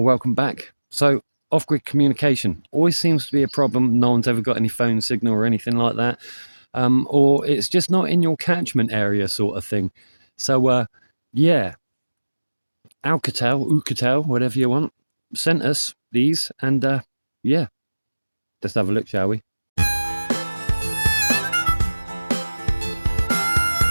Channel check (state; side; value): inverted; both; correlation -1.00